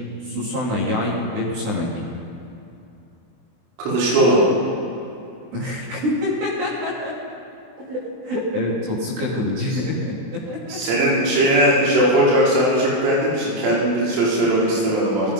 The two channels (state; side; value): late; left; 24 ms